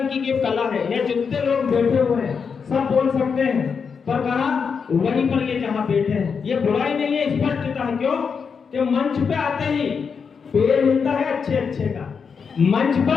की एक कला है, ये जितने लोग बैठे हुए हैं सब बोल सकते हैं, पर कहा वहीं पर ये जहां बैठे हैं, ये बुराई नहीं है, स्पष्टता है। क्यों? कि मंच पे आते ही पैर हिलता है अच्छे अच्छे का, मंच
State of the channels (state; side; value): quieter; right; 6.0 dB